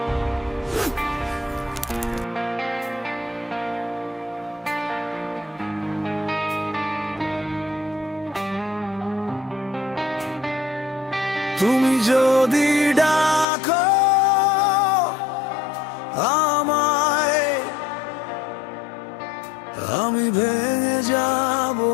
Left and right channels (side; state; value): right; drops out; at 13.5 s